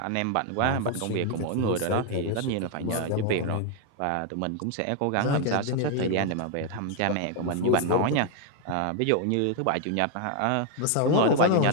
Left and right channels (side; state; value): both; different; correlation 0.01